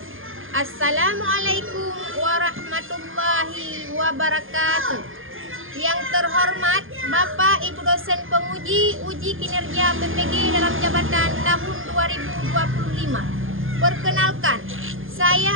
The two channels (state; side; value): late; left; 0.59 ms